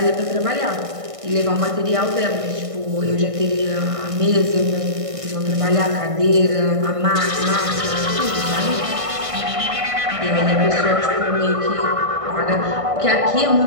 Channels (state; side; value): late; left; 1.6 ms